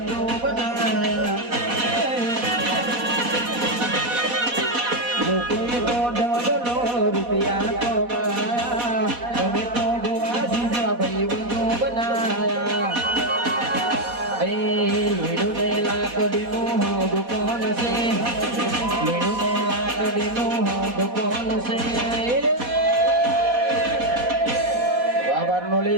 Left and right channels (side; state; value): left; late; 4.1 ms